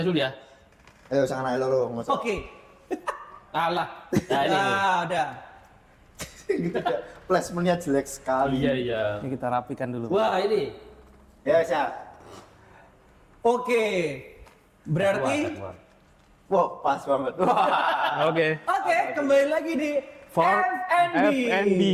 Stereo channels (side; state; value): both; identical; correlation 1.00